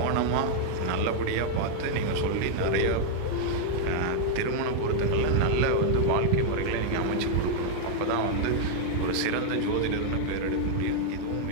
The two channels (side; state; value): both; different; correlation 0.00